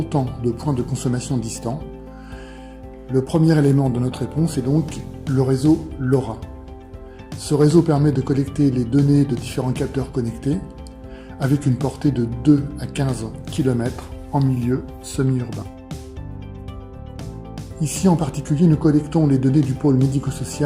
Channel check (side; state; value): both; identical; correlation 1.00